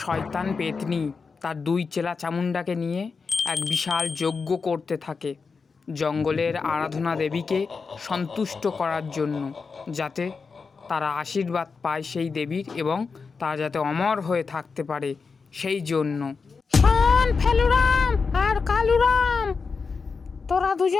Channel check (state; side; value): quieter; right; 4.9 dB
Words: শয়তান পেতনি তার দুই চেলা চামুণ্ডাকে নিয়ে এক বিশাল যজ্ঞ করতে থাকে জঙ্গলের আরাধনা দেবীকে সন্তুষ্ট করার জন্য, যাতে তারা আশীর্বাদ পায় সেই দেবীর এবং তারা যাতে অমর হয়ে থাকতে পারে সেই জন্য। শোন ফেলুরাম আর কালুরাম, তোরা